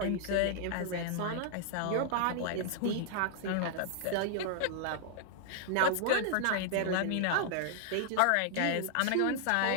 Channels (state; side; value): different; both; correlation -0.01